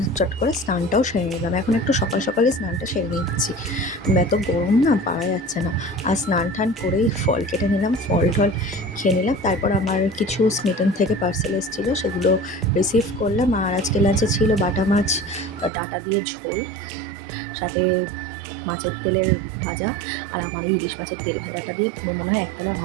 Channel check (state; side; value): drops out; left; at 15.7 s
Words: চট করে স্নানটাও সেরে নিলাম। এখন একটু সকাল সকালে স্নানটা সেরে নিচ্ছি, এত গরম না পারা যাচ্ছে না। আর স্নান টান করেই ফল কেটে নিলাম, ফল টল খেয়ে নিলাম। তারপর আমার কিছু স্মিটন থেকে পার্সেল এসেছিলো, সেগুলো রিসিভ করলাম। আর আজকে লাঞ্চে ছিল বাটা মাছ ডাটা দিয়ে ঝোল, সাথে মাছের তেলের ভাজা। আর আমার এই ইলিশ মাছের তেল ভাজাটা দিয়ে মনে হয় একতলা